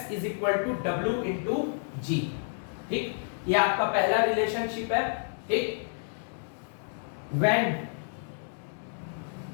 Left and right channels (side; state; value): right; silent; digital silence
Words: is equal to W into G. ठीक, ये आपका पहला रिलेशनशिप है। ठीक, when